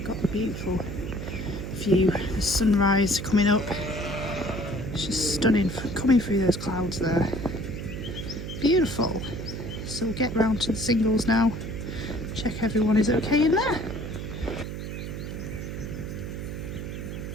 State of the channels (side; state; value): right; noise; hum, 6 dB below the sound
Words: got the beautiful view, the sunrise coming up. It's just stunning, coming through those clouds there. Beautiful. So we'll get round to the singles now. Check everyone is okay in there.